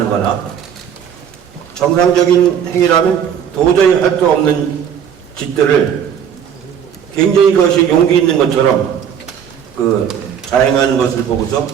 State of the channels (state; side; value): quieter; left; 8.5 dB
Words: 거나 정상적인 행위라면 도저히 할 수 없는 짓들을 굉장히 그것이 용기 있는 것처럼 자행하는 것을 보고서